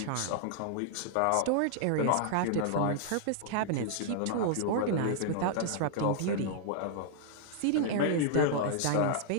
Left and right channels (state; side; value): different; both; correlation -0.01